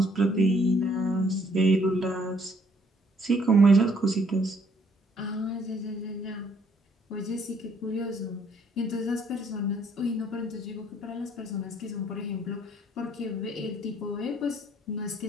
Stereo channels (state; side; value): normal; both; correlation 0.65